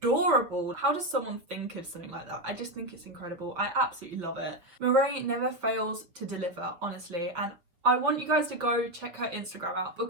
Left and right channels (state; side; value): late; left; 5.9 ms